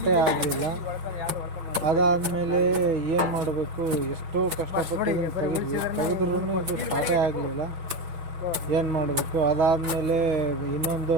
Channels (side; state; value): left; late; 6.0 ms